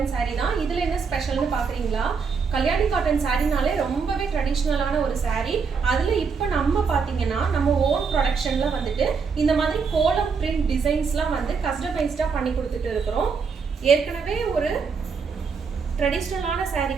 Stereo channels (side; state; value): left; quieter; 5.5 dB